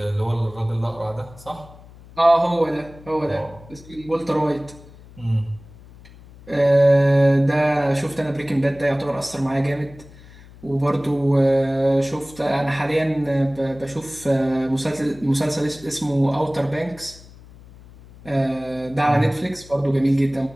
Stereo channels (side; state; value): left; noise; hum, 21 dB below the sound